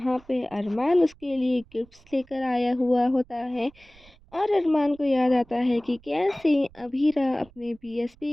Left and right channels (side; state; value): right; noise; rumble, 27 dB below the sound